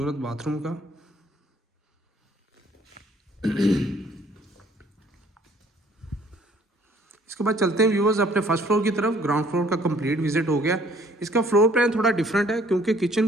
बाथरूम का। इसके बाद चलते हैं व्यूअर्स अपने फर्स्ट फ्लोर की तरफ। ग्राउंड फ्लोर का कंप्लीट विजिट हो गया। इसका फ्लोर प्लान थोड़ा डिफरेंट है क्योंकि किचन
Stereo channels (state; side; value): normal; both; correlation 0.59